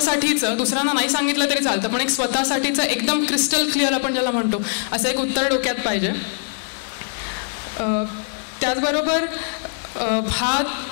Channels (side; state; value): right; silent; digital silence